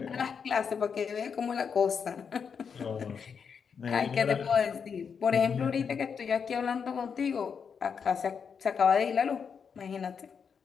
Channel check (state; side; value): quieter; right; 6.5 dB